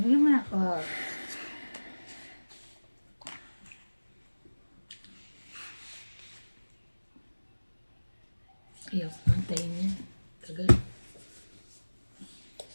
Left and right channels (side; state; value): both; inverted; correlation -1.00